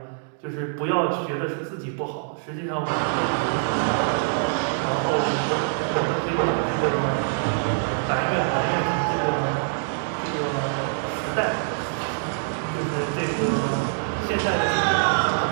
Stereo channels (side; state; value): left; silent; digital silence